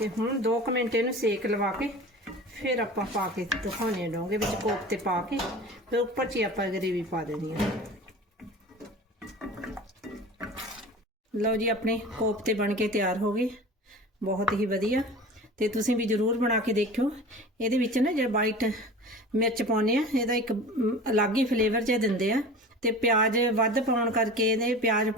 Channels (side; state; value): both; normal; correlation 0.37